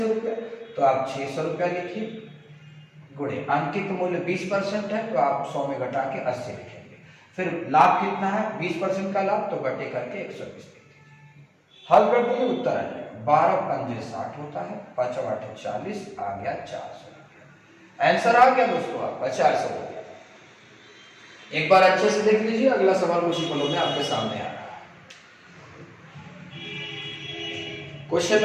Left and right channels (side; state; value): both; identical; correlation 1.00